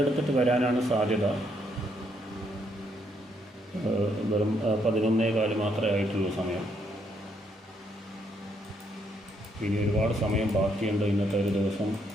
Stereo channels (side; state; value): both; normal; correlation 0.73